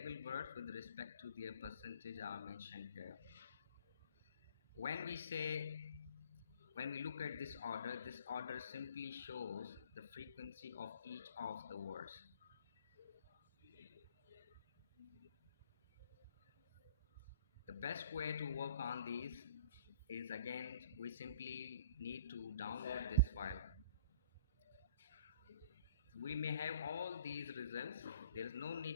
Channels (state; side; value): inverted; both; correlation -0.53